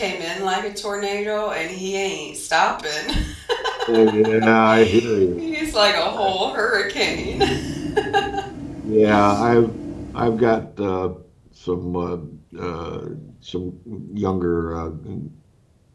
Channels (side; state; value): both; identical; correlation 1.00